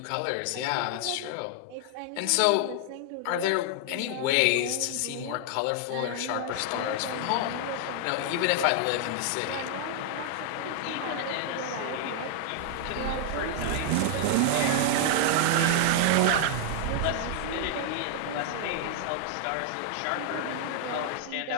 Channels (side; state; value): both; different; correlation -0.01